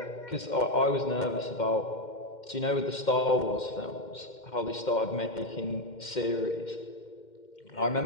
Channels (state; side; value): late; right; 2.1 ms